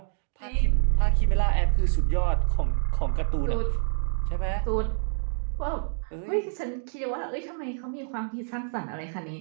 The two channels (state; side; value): silent; left; digital silence